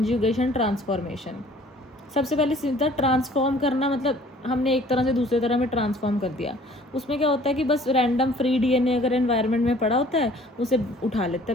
ट्रांसफॉर्मेशन। सबसे पहले सीधा ट्रांसफॉर्म करना, मतलब हमने एक तरह से दूसरे तरह में ट्रांसफॉर्म कर दिया। उसमें क्या होता है कि बस रैंडम फ्री डीएनए अगर एनवायरनमेंट में पड़ा होता है उसे उठा लेता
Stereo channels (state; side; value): normal; both; correlation 0.53